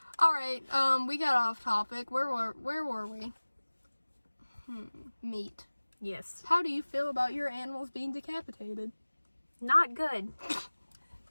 All right, we got off topic. Where were we? Meat. Yes. How do you feel about your animals being decapitated? Not good.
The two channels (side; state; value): both; inverted; correlation -1.00